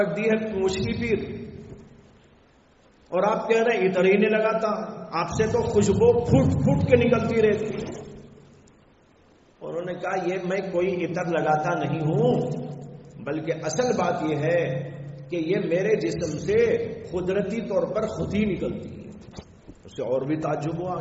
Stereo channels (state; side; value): identical; both; correlation 1.00